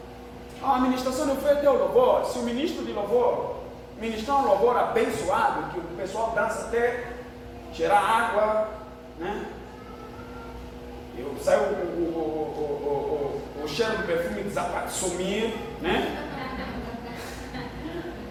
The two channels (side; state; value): both; identical; correlation 1.00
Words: A ministração de oferta é o louvor. Se o ministro de louvor ministrar um louvor abençoado, que o pessoal dança até gerar água, né? Sai o cheiro do perfume sumir, né?